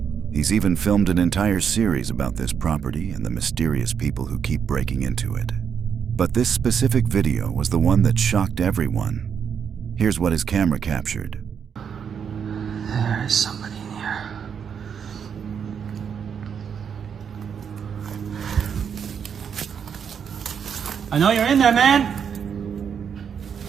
He's even filmed an entire series about this property and the mysterious people who keep breaking into it. But this specific video was the one that shocked everyone. Here's what his camera captured. There is somebody in here. I know you're in there, man.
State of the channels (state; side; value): quieter; left; 7.3 dB